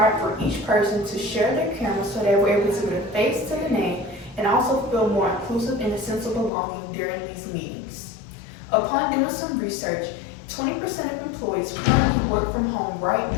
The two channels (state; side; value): drops out; right; at 6.5 s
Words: for each person to share their camera so they were able to put a face to the name and also feel more inclusive and a sense of belonging during these meetings. Upon doing some research, 20% of employees currently work from home right